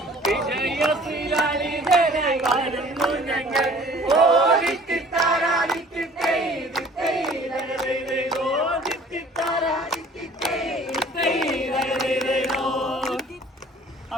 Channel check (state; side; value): normal; both; correlation 0.51